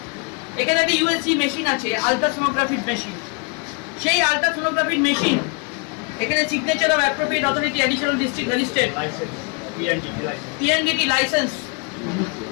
এখানে একটা ইউএসজি মেশিন আছে, আলট্রাসোনোগ্রাফির মেশিন। সেই আলট্রাসোনোগ্রাফির মেশিন এখানে signature of appropriate authority additional district magistrate PNDT licence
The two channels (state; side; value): quieter; right; 33.5 dB